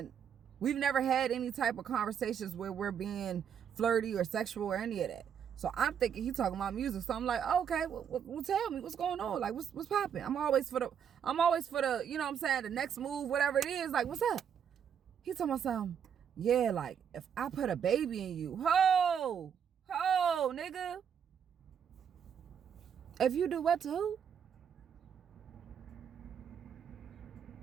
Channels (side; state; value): left; quieter; 8.0 dB